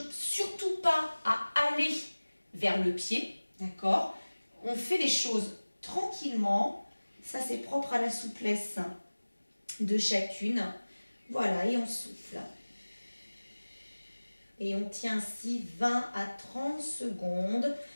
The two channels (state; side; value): inverted; both; correlation -1.00